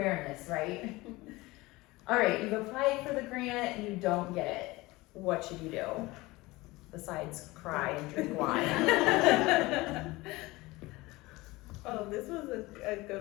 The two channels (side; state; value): right; quieter; 21.1 dB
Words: right? All right, you've applied for the grant, you don't get it. What should you do? Besides cry and drink wine. Oh, this was a